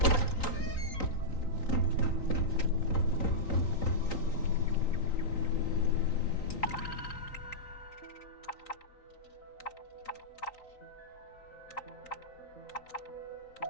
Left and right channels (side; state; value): right; late; 3.9 ms